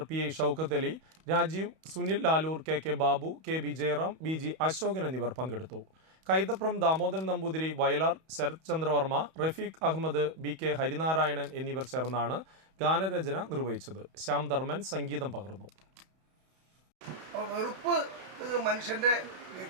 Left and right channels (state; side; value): late; left; 31 ms